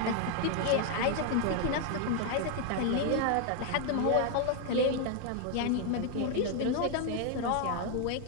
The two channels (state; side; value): different; both; correlation 0.00